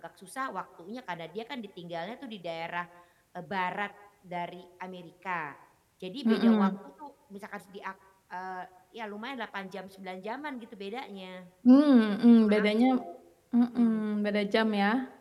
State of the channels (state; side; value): identical; both; correlation 1.00